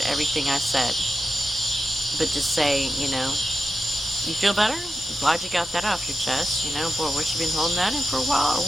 everything I said. But just say, you know, you feel better? I'm glad you got that off your chest. You know, boy, what, you been holding that in for a while or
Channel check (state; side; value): normal; both; correlation 0.89